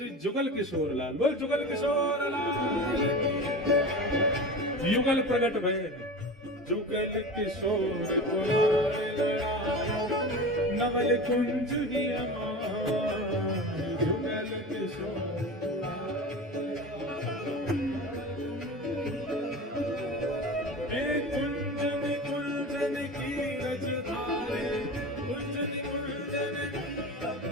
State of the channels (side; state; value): both; normal; correlation 0.30